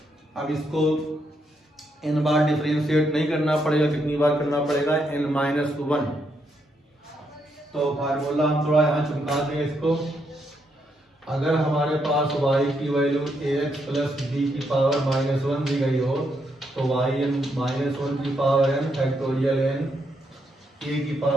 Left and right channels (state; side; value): normal; both; correlation 0.78